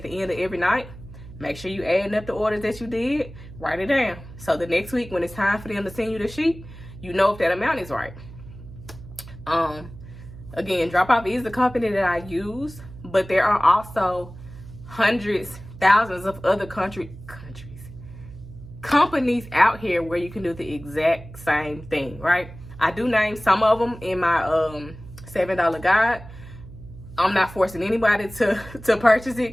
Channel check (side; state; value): right; noise; hum, 16 dB below the sound